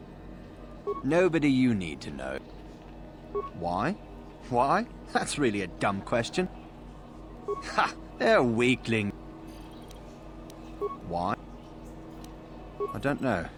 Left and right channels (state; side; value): identical; both; correlation 1.00